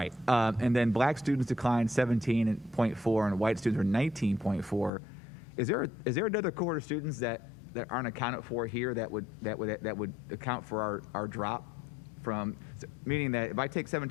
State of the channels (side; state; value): right; drops out; at 4.9 s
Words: And then black students declined 17.4 and white students were 19.4. Is there another cohort of students that aren't accounted for here that would account for our drop from, meaning that if I take